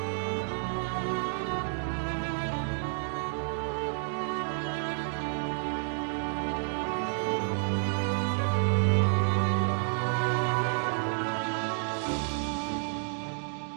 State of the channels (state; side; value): silent; left; 58 dB below the other